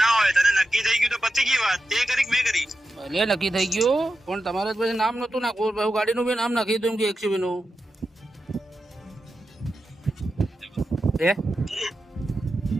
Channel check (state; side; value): normal; both; correlation 0.90